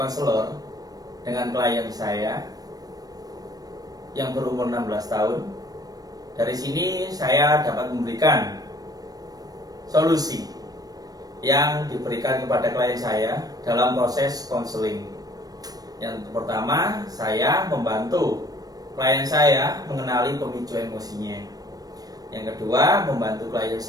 dengan klien saya yang berumur 16 tahun. Dari sini saya dapat memberikan solusi yang diberikan kepada klien saya dalam proses konseling. Yang pertama, saya membantu klien saya mengenali pemicu emosinya. Yang kedua, membantu klien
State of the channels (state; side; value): late; left; 0.18 ms